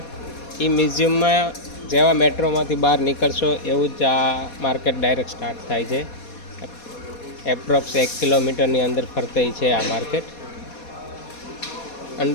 એ મ્યુઝિયમમાં જેવા મેટ્રોમાંથી બહાર નીકળશો એવું જ આ માર્કેટ ડાયરેક્ટ સ્ટાર્ટ થાય છે. એપ્રોક્સ 1 કિલોમીટરની અંદર ફરતી છે આ માર્કેટ.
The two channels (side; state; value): right; late; 4.2 ms